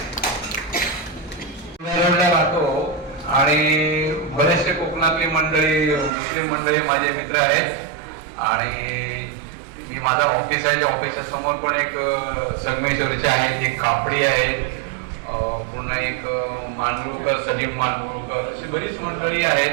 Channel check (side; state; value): left; drops out; at 6.1 s